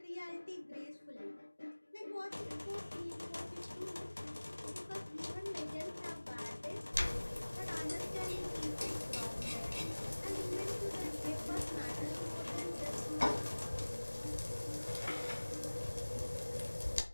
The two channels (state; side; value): inverted; both; correlation -1.00